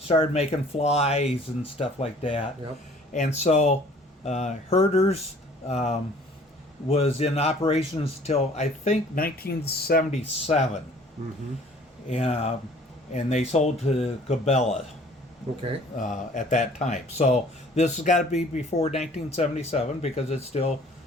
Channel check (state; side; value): normal; both; correlation 0.53